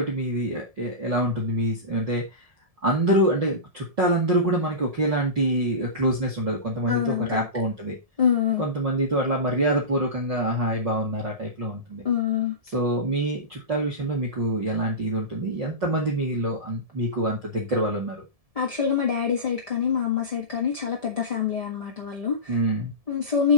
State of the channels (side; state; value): left; late; 1.7 ms